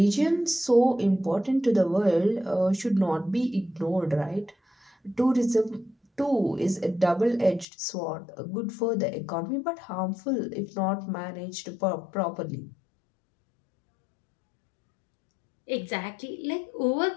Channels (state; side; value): drops out; right; at 7.7 s